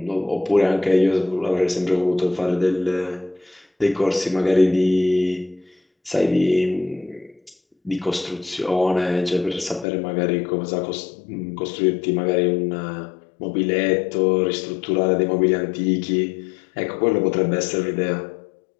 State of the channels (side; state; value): right; drops out; at 9.9 s